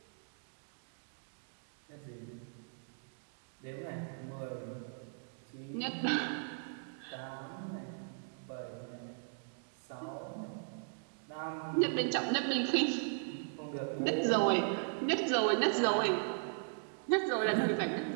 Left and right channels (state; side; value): silent; left; digital silence